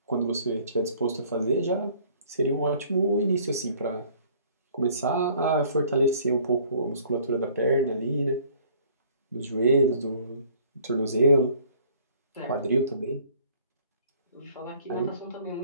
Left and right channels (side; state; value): both; inverted; correlation -0.56